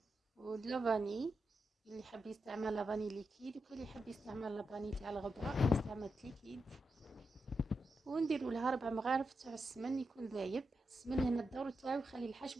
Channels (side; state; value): both; normal; correlation 0.87